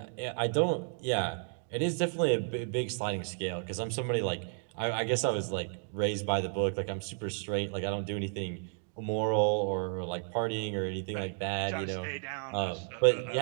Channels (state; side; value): silent; left; 56 dB below the other